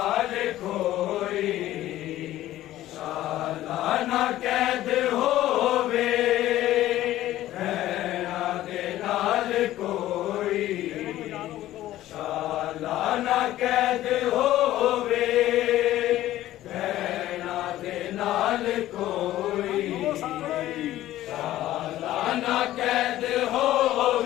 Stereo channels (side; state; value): right; quieter; 14.4 dB